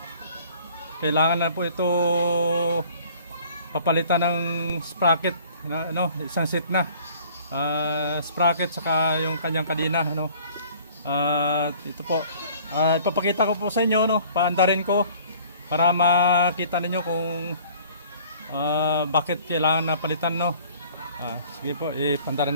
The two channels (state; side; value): inverted; both; correlation -0.52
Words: kailangan na po ito papalitan ng sprocket na, isang set na sprocket saka yung kanyang kadena, ito po ipapakita ko po sa inyo, paandarin ko para makita ninyo kung bakit kailangan na palitan, sige po,